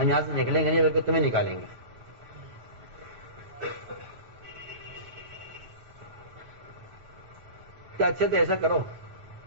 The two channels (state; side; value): late; left; 9.1 ms